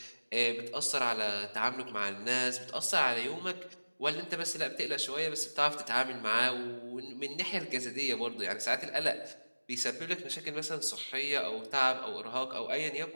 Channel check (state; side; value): inverted; both; correlation -1.00